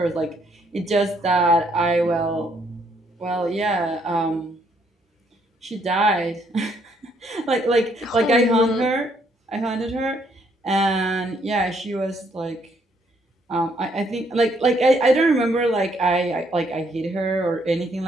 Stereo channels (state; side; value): normal; both; correlation 0.70